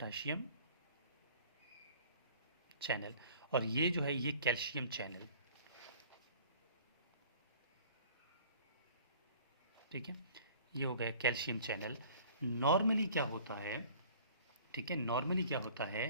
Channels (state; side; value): inverted; both; correlation -0.50